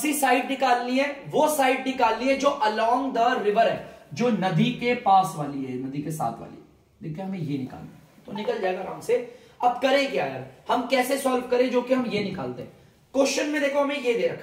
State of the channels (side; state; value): both; identical; correlation 1.00